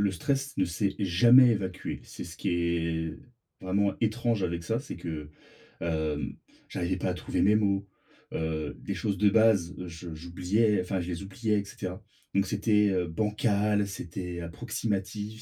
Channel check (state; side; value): identical; both; correlation 1.00